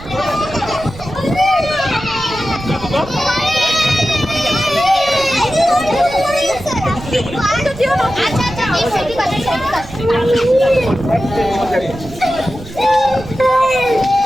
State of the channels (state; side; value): noise; right; rumble, 16 dB below the sound